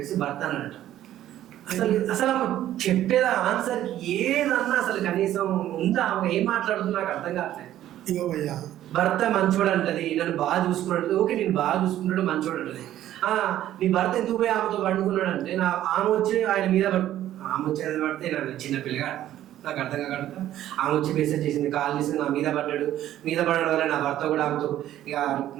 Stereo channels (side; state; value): left; quieter; 12.7 dB